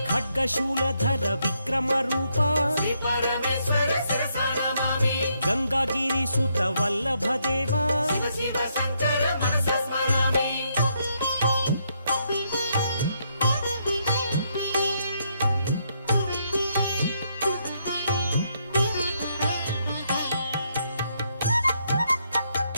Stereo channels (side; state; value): both; inverted; correlation -0.76